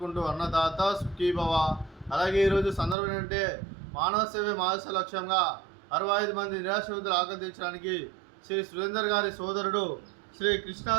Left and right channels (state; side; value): drops out; left; at 3.0 s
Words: అన్నదాత సుఖీభవ. అలాగే ఈరోజు సందర్భం ఏంటంటే మానవ సేవే మానస లక్ష్యంగా 65 మంది నిరాశ్రితులు ఆకర్షించడానికి శ్రీ సురేందర్ గారి సోదరుడు శ్రీ కృష్ణ